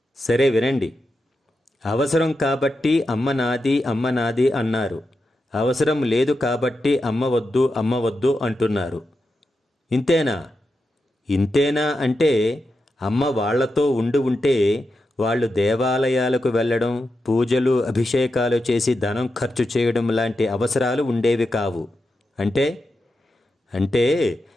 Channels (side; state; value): both; normal; correlation 0.88